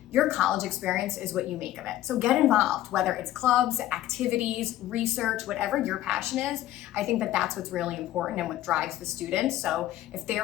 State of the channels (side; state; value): right; quieter; 14.0 dB